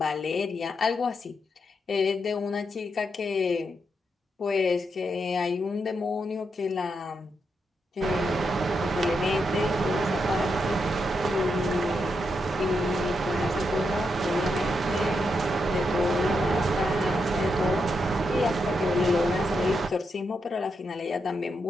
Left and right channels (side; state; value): both; normal; correlation 0.82